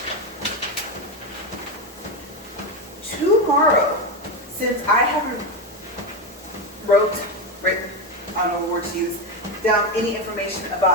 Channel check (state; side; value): normal; both; correlation 0.13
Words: tomorrow, since I haven't written, I don't know what word to use, down any information